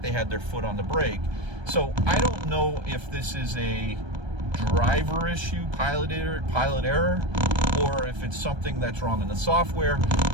they had their foot on the brake. So I don't know if this is a driver issue, pilot error, or if it's something that's wrong in the software.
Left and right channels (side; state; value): left; late; 1.3 ms